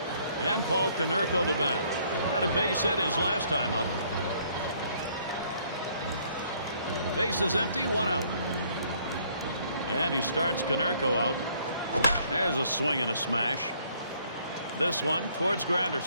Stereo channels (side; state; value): both; inverted; correlation -0.64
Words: And Paul Konerko to bat. Had a base hit his last time up. Base is empty, 1 out. And he starts Konerko out. There's a swing and a smash. This one towards